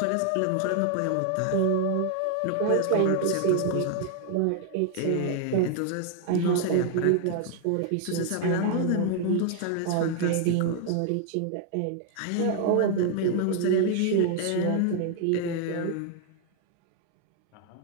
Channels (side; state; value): both; different; correlation 0.00